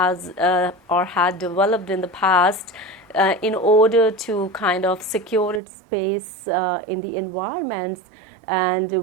or had developed in the past in order to kind of secure its space in the environments, and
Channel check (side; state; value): left; drops out; at 5.6 s